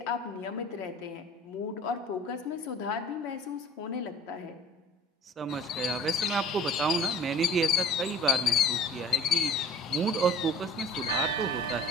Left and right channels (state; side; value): normal; both; correlation 0.45